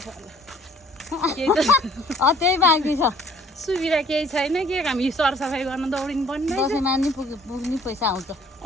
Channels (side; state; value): both; normal; correlation 0.57